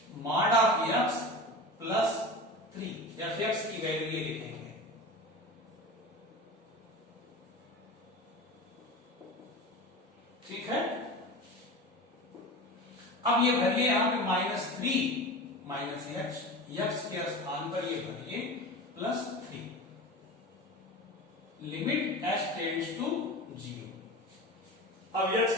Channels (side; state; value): both; normal; correlation 0.31